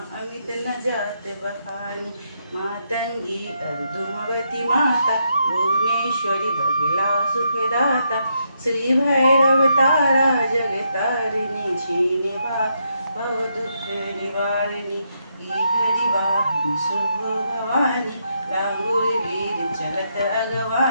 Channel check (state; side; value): inverted; both; correlation -0.78